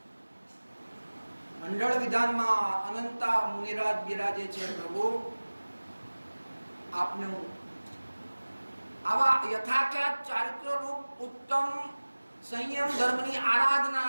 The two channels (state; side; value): inverted; both; correlation -1.00